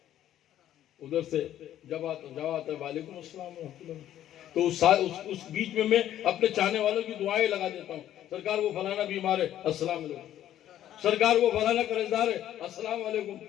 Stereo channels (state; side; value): quieter; right; 11.9 dB